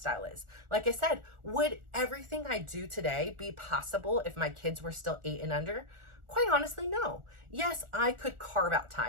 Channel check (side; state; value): left; late; 1.4 ms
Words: is. Like I said, would everything I do today be possible if my kids were still 8 and under? Quite honestly, no. Yes, I could carve out